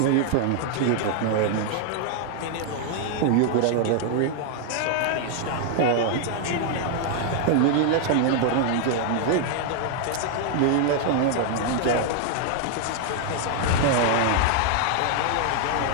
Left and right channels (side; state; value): both; different; correlation 0.00